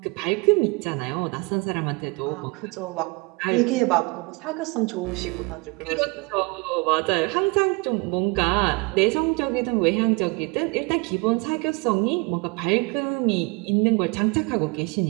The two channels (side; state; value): left; quieter; 27.8 dB